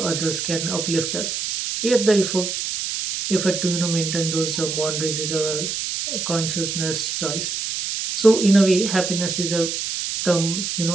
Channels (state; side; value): noise; right; hiss, 3 dB below the sound